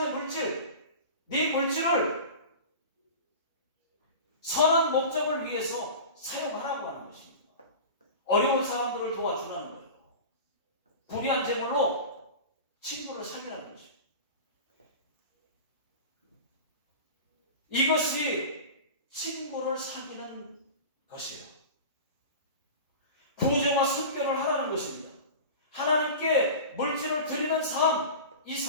물질, 네 물질을 선한 목적을 위해서 사용하라고 하는 것입니다. 어려운 사람들을 도와주라는 거예요. 불의한 제물로 친구를 사귀라는 것입니다. 이것이 친구를 사귀는 것이에요. 구제와 선교를 하라는 것입니다. 하나님께 물질을 드리는 삶, 이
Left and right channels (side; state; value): both; inverted; correlation -0.33